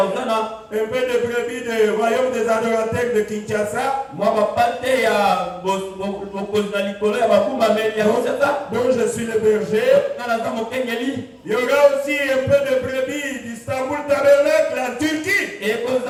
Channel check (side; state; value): both; identical; correlation 1.00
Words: un peu de brebis du royaume des adorateurs de Kinshasa, dont je suis le berger. Il y aura aussi un peu de brebis d'Istanbul Tabernacle en Turquie,